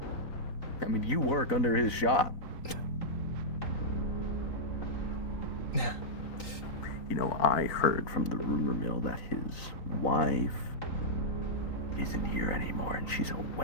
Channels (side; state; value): right; late; 3.8 ms